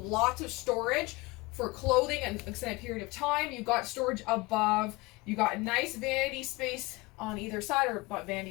of storage for clothing and an extended period of time. You've got storage above. You got nice vanity space on either side, or not vanity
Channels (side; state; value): right; quieter; 23.1 dB